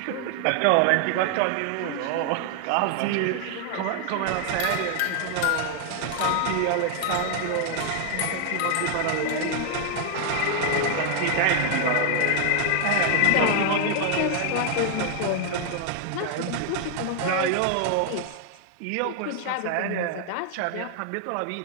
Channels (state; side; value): different; both; correlation 0.00